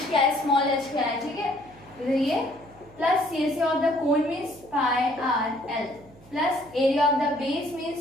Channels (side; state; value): right; noise; hum, 25 dB below the sound